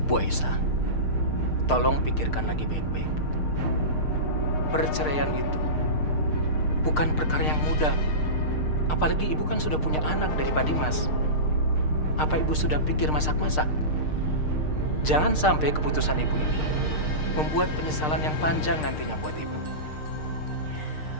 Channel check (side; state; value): right; late; 6.6 ms